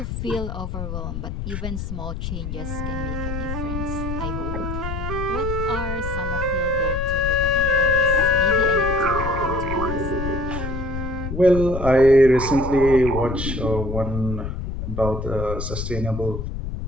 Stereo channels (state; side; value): noise; left; rumble, 5 dB below the sound